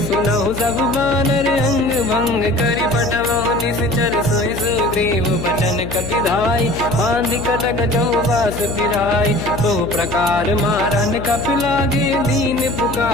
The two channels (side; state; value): left; noise; hum, 8 dB below the sound